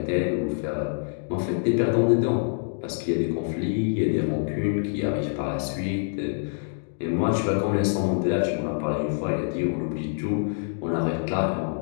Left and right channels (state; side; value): silent; right; digital silence